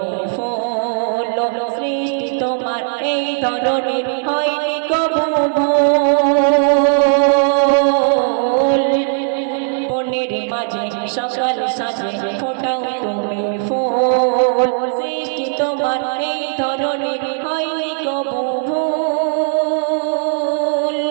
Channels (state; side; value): silent; left; 68 dB below the other